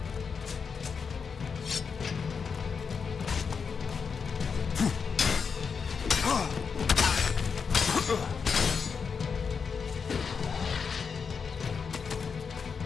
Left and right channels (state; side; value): quieter; right; 5.8 dB